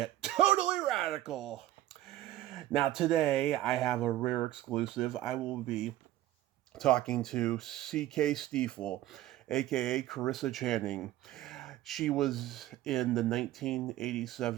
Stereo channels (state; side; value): quieter; left; 14.3 dB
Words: totally radical. Now today I have a rare exclusive. I will be talking to C.K. Steefel, aka Carissa Channing. She was in the